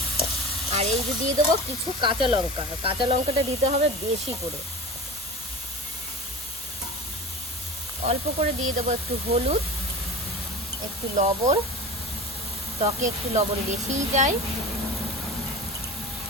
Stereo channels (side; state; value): both; normal; correlation 0.32